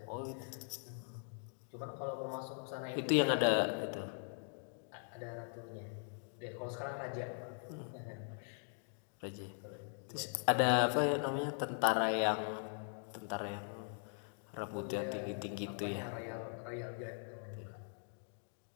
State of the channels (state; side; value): silent; right; 51 dB below the other